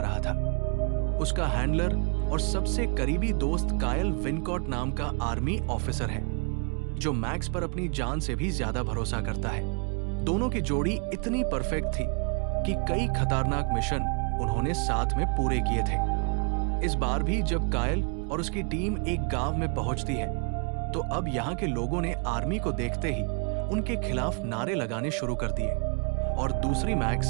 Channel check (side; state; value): left; quieter; 39.0 dB